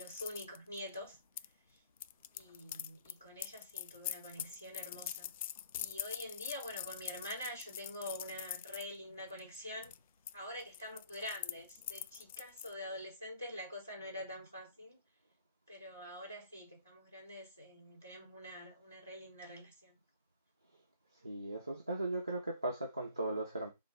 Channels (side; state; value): both; inverted; correlation -0.55